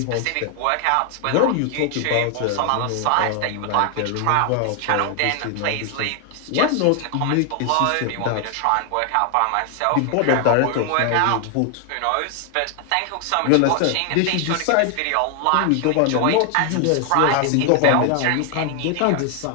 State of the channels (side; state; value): both; different; correlation 0.00